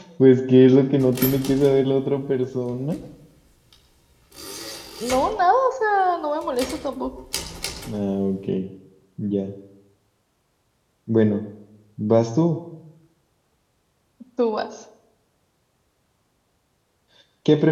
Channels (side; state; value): both; identical; correlation 1.00